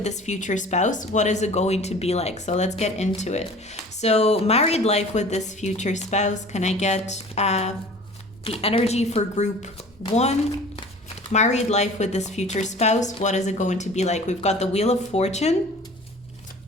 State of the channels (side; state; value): both; normal; correlation 0.44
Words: this future spouse. What is it going to be like? So let's get into it. So married life with this future spouse. Can I get the energy for group 1, Married life with this future spouse, what is it going to be like? We've got the Wheel of Fortune,